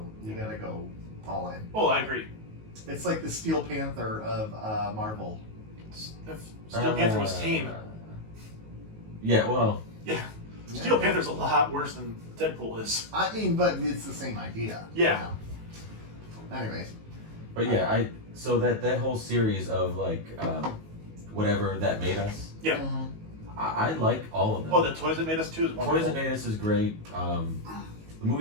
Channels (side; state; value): left; late; 19 ms